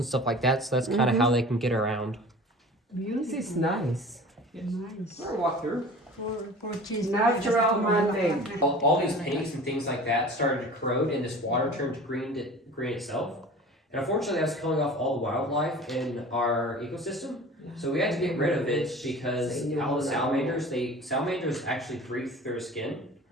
stuff like that. So that's kind of how they can get around. This is nice. Nice. We're gonna walk through. Natural man-made. All these paints and things like that started to corrode, and this water turned green itself. And unfortunately, that's killing off all the wildlife in our ecosystem. So we had to get rid of it because all the salamanders actually breathe through their skin.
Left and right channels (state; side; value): normal; both; correlation 0.41